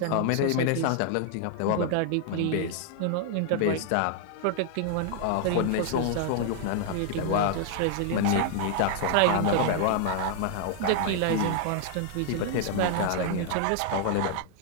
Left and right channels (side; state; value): both; different; correlation 0.00